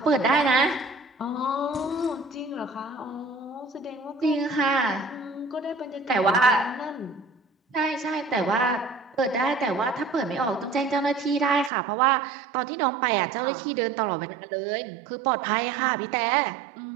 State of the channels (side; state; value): left; drops out; at 11.7 s